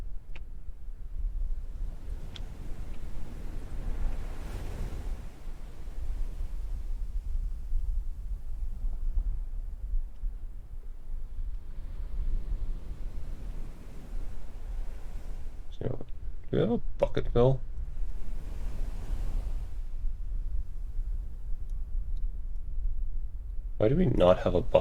So, do we have a bucket fill? Why do we not have a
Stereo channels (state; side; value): identical; both; correlation 1.00